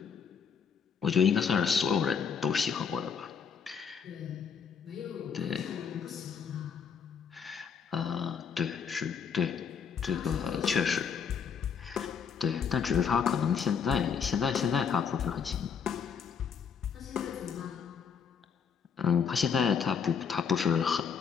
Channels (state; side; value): quieter; right; 6.7 dB